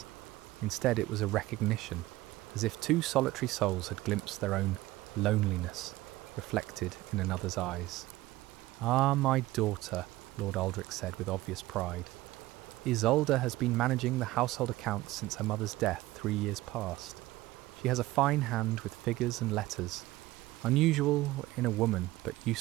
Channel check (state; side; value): quieter; left; 17.7 dB